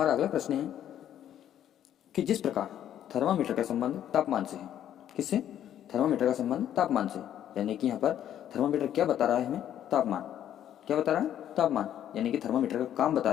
अगला प्रश्न है कि जिस प्रकार थर्मामीटर का संबंध तापमान से है। किससे? थर्मामीटर का संबंध तापमान से, यानी कि यहाँ पर थर्मामीटर क्या बता रहा है हमें? तापमान। क्या बता रहा है? तापमान, यानी कि थर्मामीटर का काम बता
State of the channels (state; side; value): quieter; right; 10.7 dB